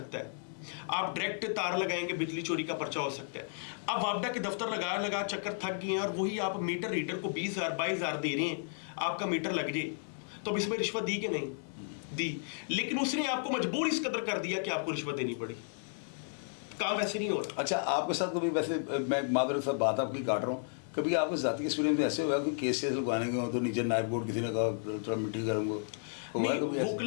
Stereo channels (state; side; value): silent; right; digital silence